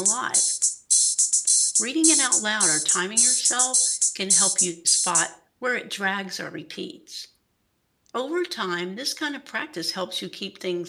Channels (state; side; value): identical; both; correlation 1.00